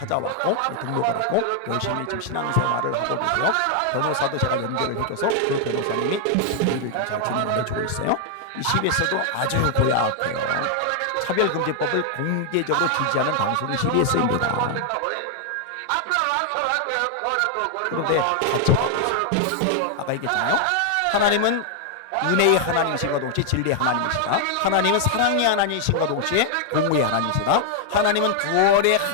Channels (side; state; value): both; different; correlation 0.00